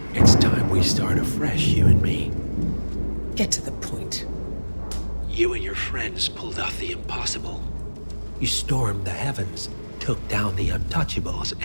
It's time we start afresh, you and me. Get to the point. You and your friends pulled off the impossible. You stormed the heavens, took down the untouchables,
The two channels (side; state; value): both; inverted; correlation -1.00